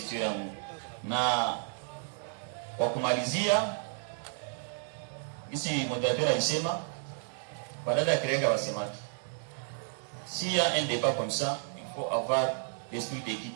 yangu. Na kwa kumalizia hizi moderateur alisema badala ya kirenga wasemaki. S'il y a un débat comme ça, il faut avoir l'esprit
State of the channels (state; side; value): silent; left; digital silence